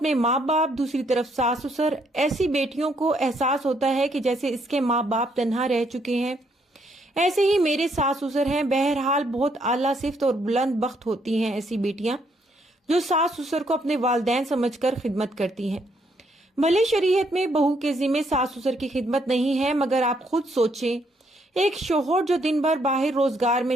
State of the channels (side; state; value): both; normal; correlation 0.72